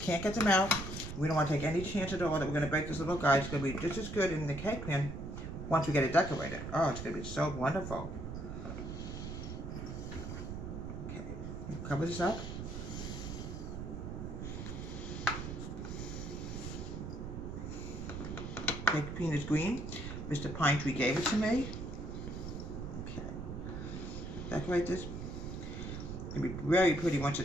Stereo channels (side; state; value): right; noise; rumble, 6 dB below the sound